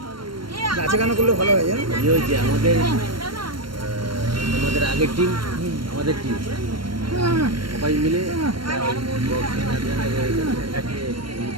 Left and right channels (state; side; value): late; left; 0.72 ms